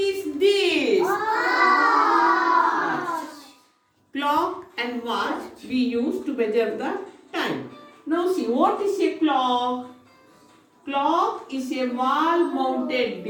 this? Clock and watch we use to measure the time. Now see, what is a clock? Clock is a wall-mounted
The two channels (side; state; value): both; identical; correlation 1.00